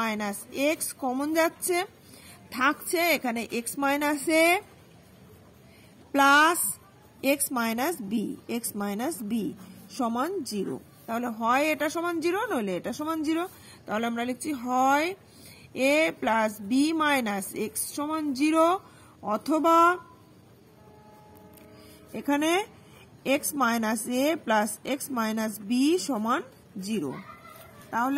x common যাচ্ছে, থাকছে এখানে x minus a plus x minus b সমান 0। তাহলে হয় এটা সমান 0 নইলে এটা সমান 0। তাহলে আমরা লিখছি হয় a plus b minus x সমান 0 অথবা এখানে x minus a plus x minus b সমান 0।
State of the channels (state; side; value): identical; both; correlation 1.00